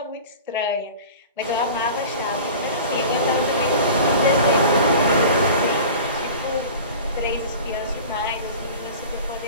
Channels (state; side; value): inverted; both; correlation -0.38